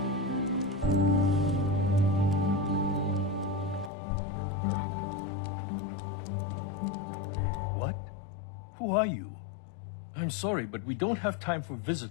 What? Who are you? I'm sorry, but we don't have time for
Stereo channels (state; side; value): drops out; right; at 3.9 s